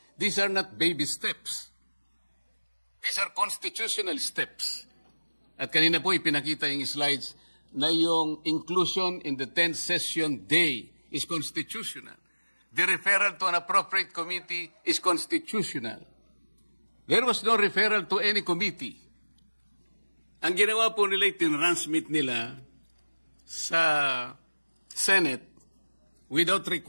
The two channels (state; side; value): inverted; both; correlation -1.00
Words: These are not baby steps. These are constitutional steps. At kanina po ipinakita yung slides na yung inclusion in the 10th session day is constitutional. The referral to an appropriate committee is constitutional. There was no referral to any committee. Ang ginawa po nila, tinransmit nila sa Senate without